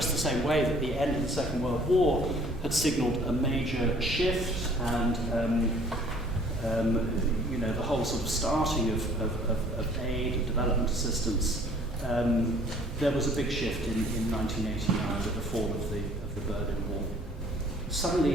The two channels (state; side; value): normal; both; correlation 0.55